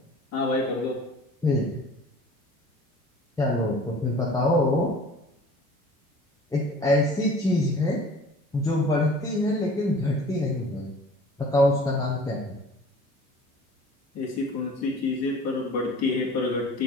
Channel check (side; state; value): both; normal; correlation 0.46